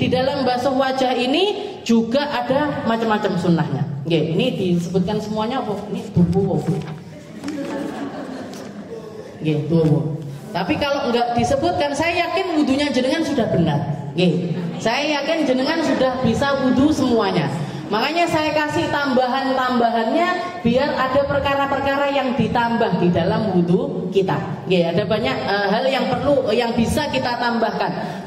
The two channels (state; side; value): identical; both; correlation 1.00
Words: dalam basuh wajah ini juga ada macam-macam sunnahnya. Ini disebutkan semuanya apa? Ini tubuh. Tubuh. Tapi kalau enggak disebutkan, saya yakin wudhunya jenengan sudah benar. Saya yakin jenengan sudah bisa wudhu semuanya. Makanya saya kasih tambahan-tambahannya biar ada perkara-perkara yang ditambah di dalam wudhu kita. Nggih, ada banyak hal yang perlu yang bisa kita tambahkan.